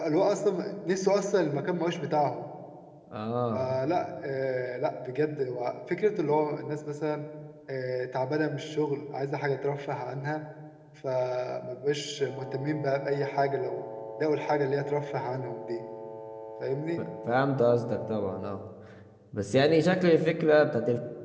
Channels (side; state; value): both; identical; correlation 1.00